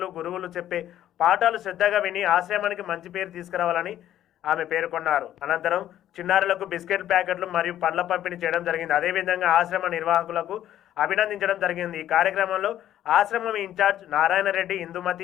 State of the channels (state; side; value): quieter; right; 11.9 dB